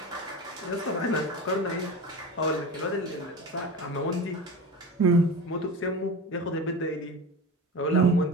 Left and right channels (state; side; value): normal; both; correlation 0.29